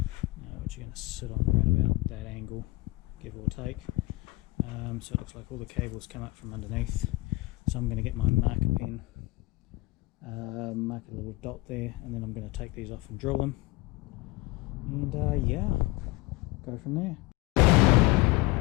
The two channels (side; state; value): right; quieter; 20.9 dB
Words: which are going to sit on around about that angle, give or take. So it looks like all the cables come up from underneath. So I'm going to get my marker pen, mark a little dot there, and then I'm going to take these off and drill them. And yeah, go from there.